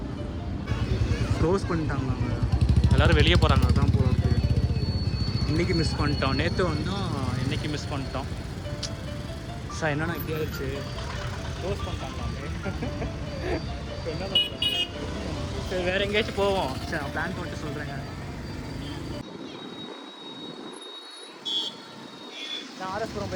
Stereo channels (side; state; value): both; identical; correlation 1.00